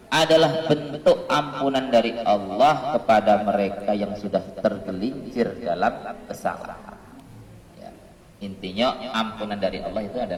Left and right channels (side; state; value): both; identical; correlation 1.00